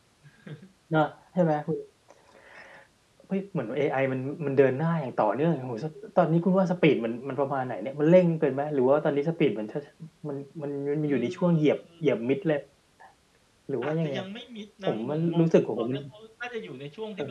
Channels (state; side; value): identical; both; correlation 1.00